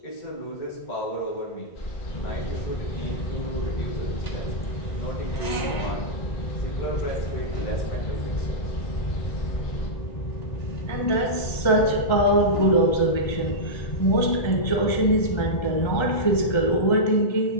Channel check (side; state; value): right; late; 1.3 ms